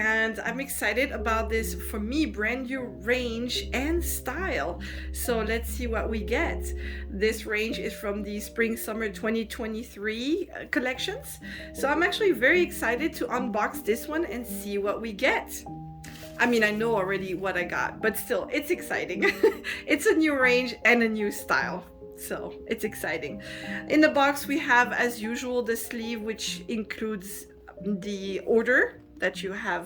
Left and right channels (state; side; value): identical; both; correlation 1.00